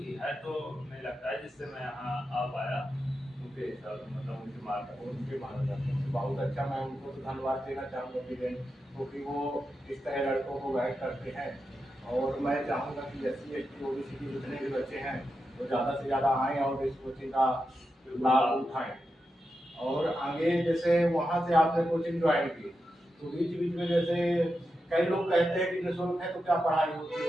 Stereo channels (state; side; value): normal; both; correlation 0.88